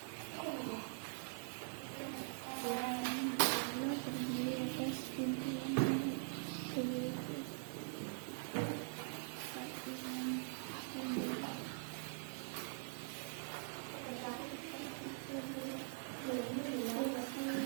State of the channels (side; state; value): left; silent; digital silence